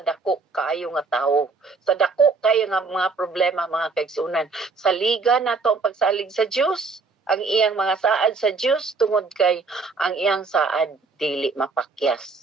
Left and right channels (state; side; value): quieter; left; 4.2 dB